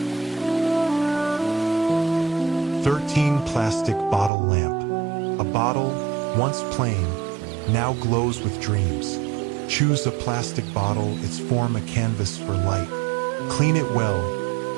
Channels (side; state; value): left; drops out; at 4.3 s